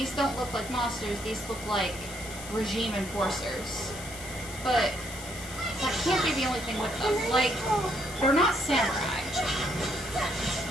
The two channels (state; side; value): noise; left; hiss, 12 dB below the sound